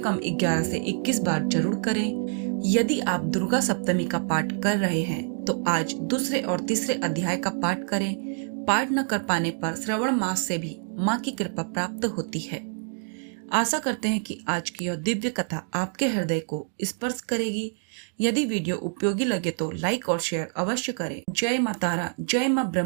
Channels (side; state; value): left; silent; 61 dB below the other